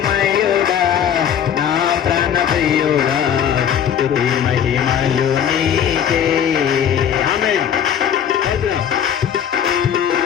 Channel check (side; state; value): right; quieter; 9.0 dB